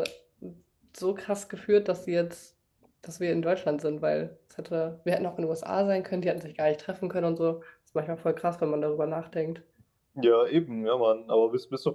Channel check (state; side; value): identical; both; correlation 1.00